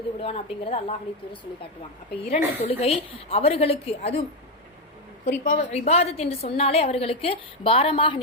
விடுவான் அப்படிங்கறத அல்லாஹ்வுடைய தூதர் சொல்லி காட்டுவாங்க. அப்ப 2 தொழுகை அவர்களுக்கு, அதுவும் குறிப்பாக இபாதத் என்று சொன்னாலே அவர்களுக்கு பாரமாக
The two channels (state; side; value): normal; both; correlation 0.07